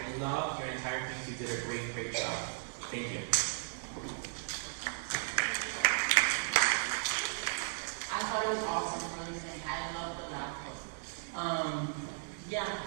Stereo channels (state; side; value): silent; left; digital silence